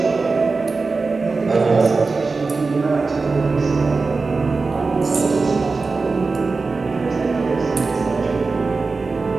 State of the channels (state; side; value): quieter; left; 4.1 dB